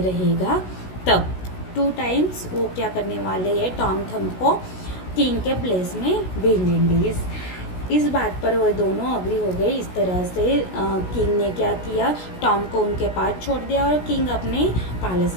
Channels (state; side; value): late; right; 16 ms